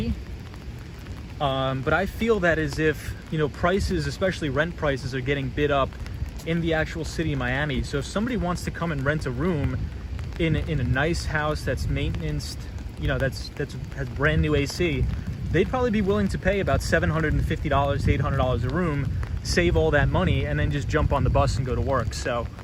But I feel that as if, prices, especially rent prices, are getting bid up in the actual city of Miami. So if somebody wants to come and rent a room in a nice house that's maintenanced, has brand new AC, they'd probably be willing to pay about $750 to $800 a room, save all that money, and then just jump on the bus and go to work. So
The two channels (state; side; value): identical; both; correlation 1.00